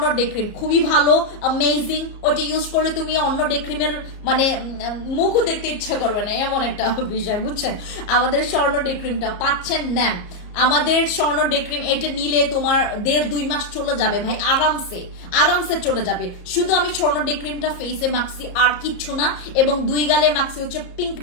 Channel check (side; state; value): right; late; 34 ms